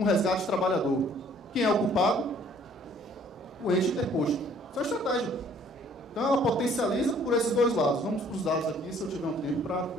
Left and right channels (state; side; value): normal; both; correlation 0.58